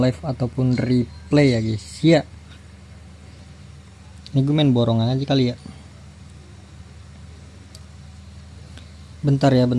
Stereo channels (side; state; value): both; identical; correlation 1.00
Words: ataupun replay ya guys. Ya, ini gue main borongan aja kali ya. Bentar ya,